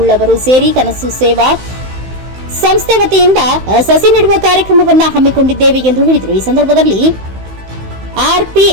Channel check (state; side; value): late; left; 16 ms